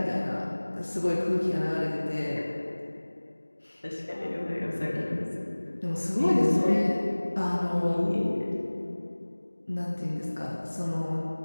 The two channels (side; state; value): both; inverted; correlation -1.00